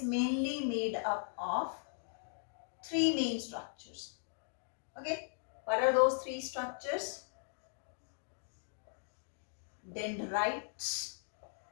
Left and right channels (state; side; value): silent; right; digital silence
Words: mainly made up of three main structures. Okay, what are those three structures? Dendrites.